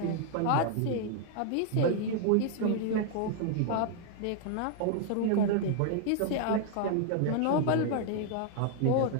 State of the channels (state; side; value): different; both; correlation 0.00